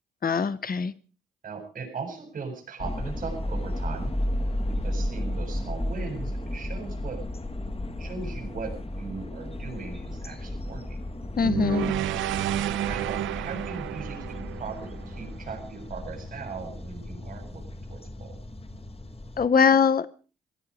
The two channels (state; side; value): normal; both; correlation 0.54